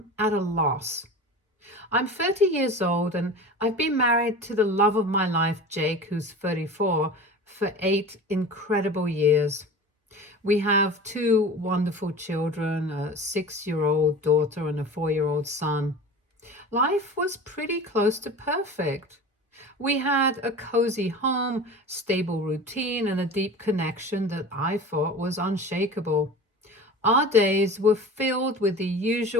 at a loss. I'm 30 years old and I've been married to the love of my life, Jake, who's 34, for 8 incredible years. We have two wonderful children, a 6-year-old daughter and a 4-year-old son. Life was pretty close to perfect. We had a cozy home, stable routine, and a deep connection that I thought was unshakable. Our days were filled with the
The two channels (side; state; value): both; normal; correlation 0.35